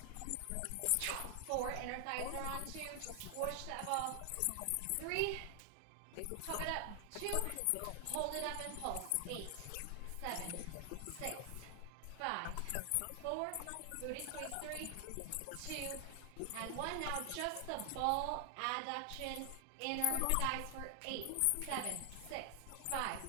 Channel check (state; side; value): different; both; correlation 0.00